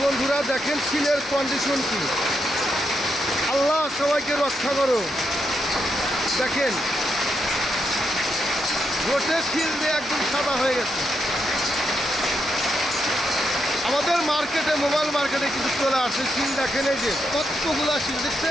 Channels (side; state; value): both; normal; correlation 0.82